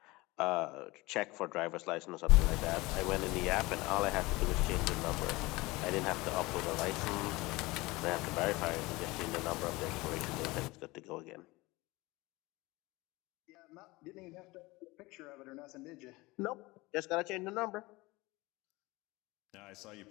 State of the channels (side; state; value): right; quieter; 21.8 dB